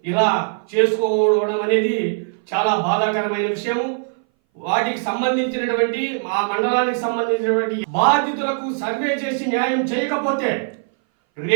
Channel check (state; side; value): silent; left; 60 dB below the other